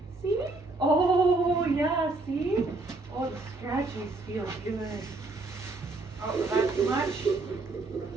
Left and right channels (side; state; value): left; quieter; 3.3 dB